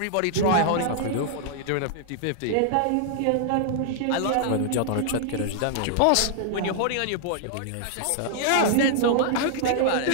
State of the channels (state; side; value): different; both; correlation -0.01